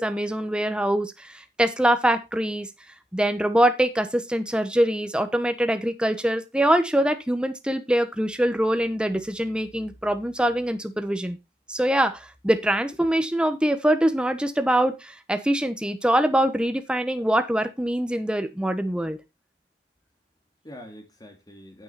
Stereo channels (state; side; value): normal; both; correlation 0.88